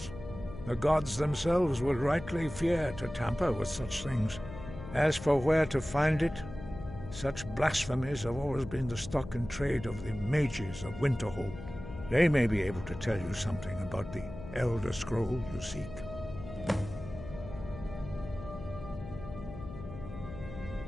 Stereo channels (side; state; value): left; noise; hum, 12 dB below the sound